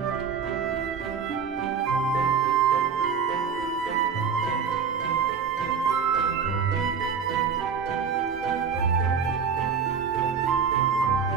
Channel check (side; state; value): left; quieter; 6.4 dB